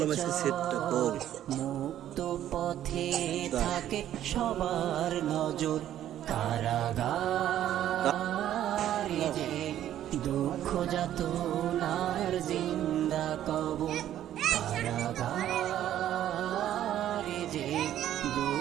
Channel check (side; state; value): left; quieter; 11.7 dB